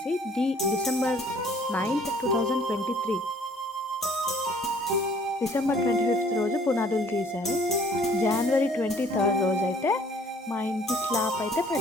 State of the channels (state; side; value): normal; both; correlation 0.57